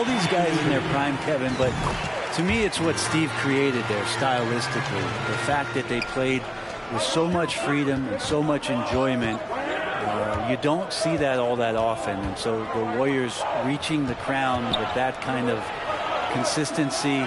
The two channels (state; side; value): identical; both; correlation 1.00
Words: these guys in their prime, Kevin, but to me it's what Steve created there stylistically. The fact that they played with so much freedom and so much enjoyment. You don't see that all that often, and so the Warriors reaching the crown with that kind of consistency